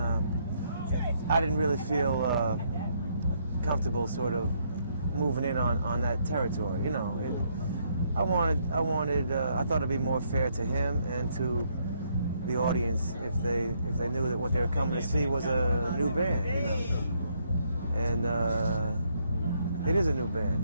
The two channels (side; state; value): both; inverted; correlation -0.72